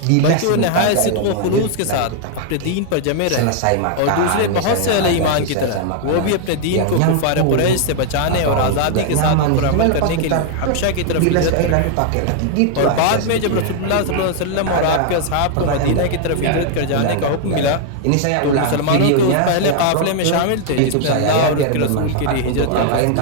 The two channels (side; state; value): both; different; correlation 0.00